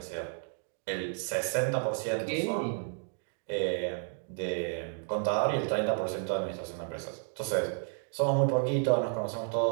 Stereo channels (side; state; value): left; silent; 57 dB below the other